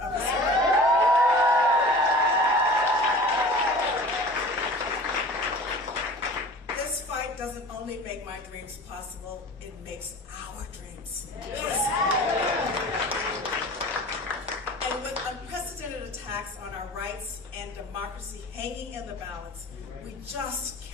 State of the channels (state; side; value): normal; both; correlation 0.41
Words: the Supreme Court. This fight doesn't only make my dreams possible, it makes our dreams possible. And with unprecedented attacks on our rights and democracy hanging in the balance, we just